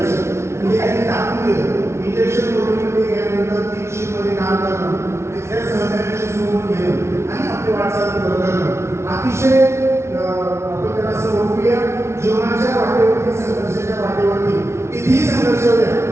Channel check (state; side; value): late; left; 0.13 ms